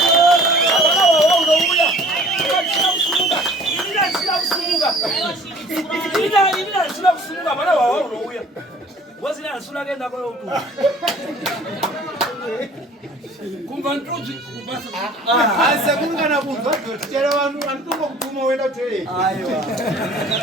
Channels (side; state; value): both; normal; correlation 0.50